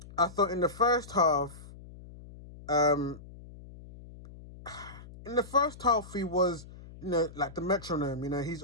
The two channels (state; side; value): noise; left; hum, 17 dB below the sound